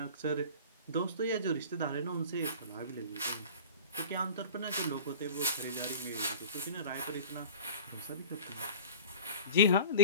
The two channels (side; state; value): both; inverted; correlation -0.39